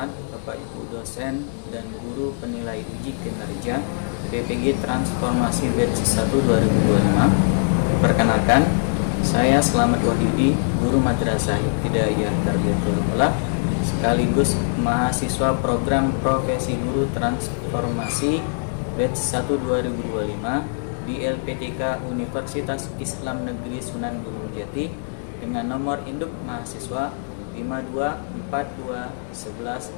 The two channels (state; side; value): silent; right; digital silence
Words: Bapak Ibu dosen dan guru penilai uji kinerja PPG Transformasi Batch 1 2025. Perkenalkan, saya Slamet Wahyudi, guru Madrasah Ibtidaiyah Tarbiyatul Aulah sekaligus mahasiswa program Profesi Guru Transformasi Batch 1 2025 di LPTK Universitas Islam Negeri Sunan Gunung Jati dengan nomor induk mahasiswa